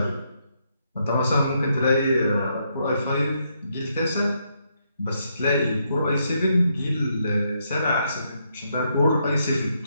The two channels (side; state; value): both; inverted; correlation -0.77